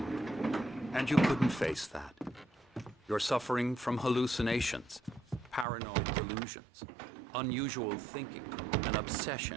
and you couldn't face that. You're suffering from hallucinations, paranoid delusions, unusual thinking, an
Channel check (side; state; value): left; drops out; at 5.7 s